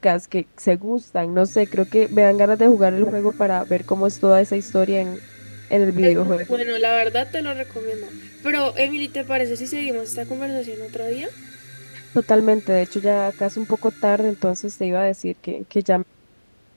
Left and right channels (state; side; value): inverted; both; correlation -1.00